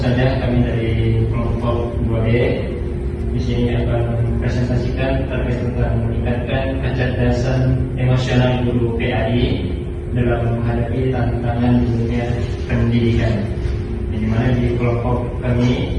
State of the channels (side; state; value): both; identical; correlation 1.00